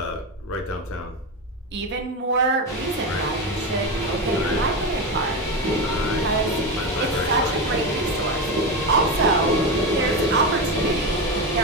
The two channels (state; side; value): normal; both; correlation 0.17